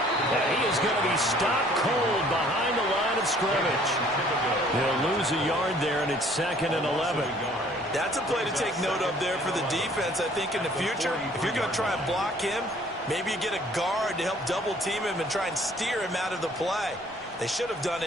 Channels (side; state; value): both; normal; correlation 0.57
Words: And he is going to be stopped cold behind the line of scrimmage. He'll lose a yard there, and it's 2nd and 11. That's a play to take note of there for the defense. I think in the future, if you're going to try and block him, maybe you get a guard to help double team him and try and steer him out of the play. They should have done